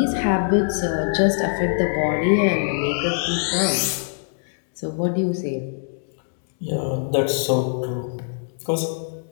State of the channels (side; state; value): right; silent; digital silence